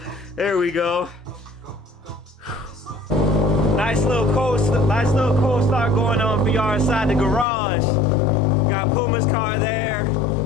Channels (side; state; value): right; drops out; at 7.5 s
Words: There we go. Nice little cold start going on for y'all inside the garage. Got Puma's car there,